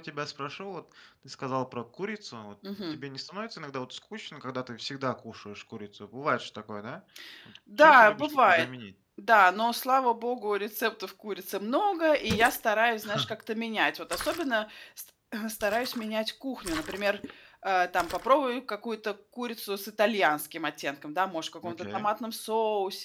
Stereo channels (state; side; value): identical; both; correlation 1.00